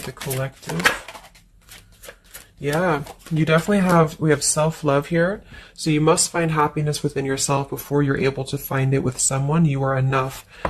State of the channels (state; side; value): identical; both; correlation 1.00